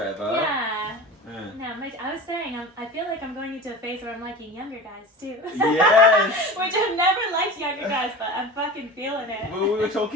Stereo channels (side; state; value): both; normal; correlation 0.33